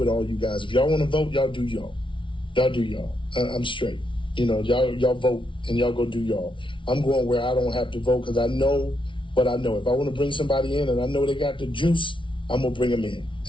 all you guys. If y'all want to vote, y'all do y'all. Y'all do y'all. I'm straight. You know, y'all vote and y'all go do y'all. I'm going where I don't have to vote, because I know what I know. If I want to bring somebody in and I know they got the juice, I'm gonna bring them in.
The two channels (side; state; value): right; late; 0.25 ms